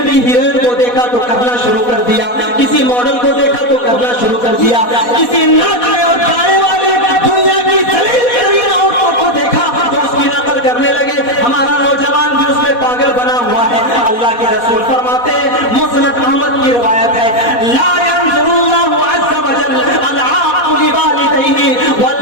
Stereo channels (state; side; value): late; right; 4.1 ms